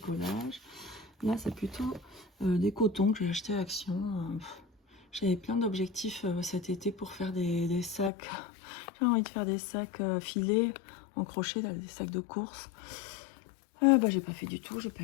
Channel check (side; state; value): right; drops out; at 8.1 s